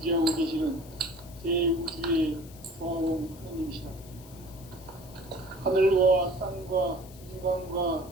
계시는 대우주의 조화원 하느님이시다. 하늘과 땅과 인간과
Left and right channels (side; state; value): left; noise; hiss, 22 dB below the sound